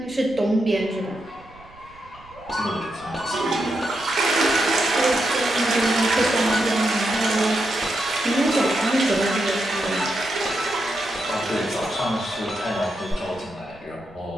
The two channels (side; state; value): right; noise; rumble, 24 dB below the sound